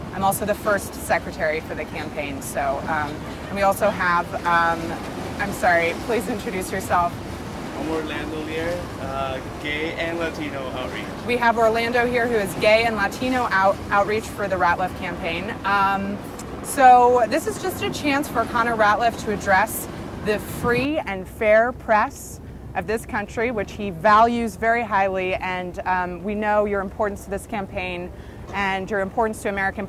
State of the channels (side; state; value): both; identical; correlation 1.00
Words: also the first secretary for the campaign. So, and we also have, I'm sorry, please introduce yourself. I'm Orlando here, gay and Latino outreach. We have Orlando here, who is gay and Latino outreach for the Ratliff campaign. So this is just a chance for Connor Ratliff to address the free and fair press of this country, which he values very highly, and we know your importance to this campaign and your importance to American